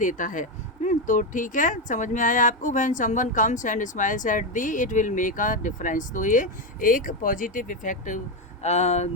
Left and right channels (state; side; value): normal; both; correlation 0.10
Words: है। तो ठीक है, समझ में आया आपको। When someone comes and smiles at the it will make a difference, तो ये एक पॉजिटिव इफेक्ट